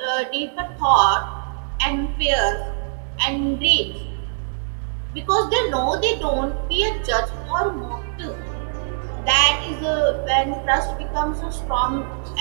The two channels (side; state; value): left; silent; digital silence